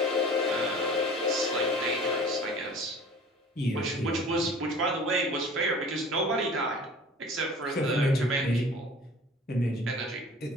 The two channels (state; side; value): normal; both; correlation 0.45